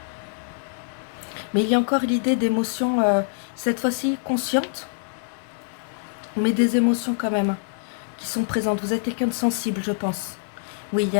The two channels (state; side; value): silent; right; digital silence